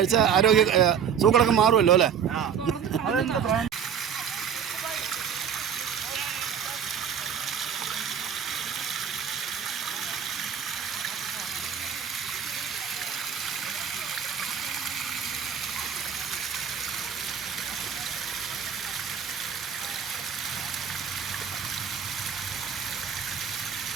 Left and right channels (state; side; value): quieter; left; 7.7 dB